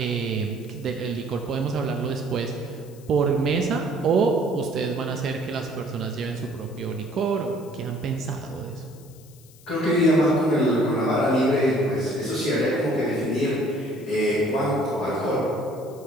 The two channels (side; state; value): left; noise; hiss, 25 dB below the sound